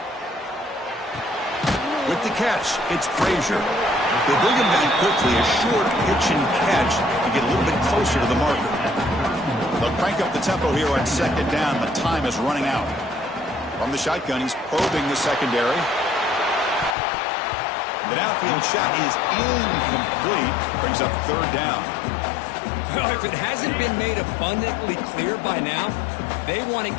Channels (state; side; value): drops out; right; at 16.9 s